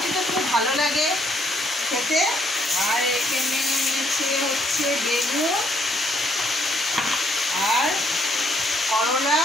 খুব ভালো লাগে খেতে। আর এখানে এনেছে হচ্ছে বেগুন আর করলা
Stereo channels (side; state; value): both; normal; correlation 0.70